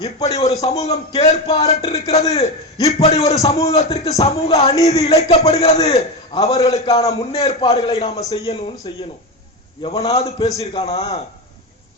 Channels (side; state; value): both; normal; correlation 0.16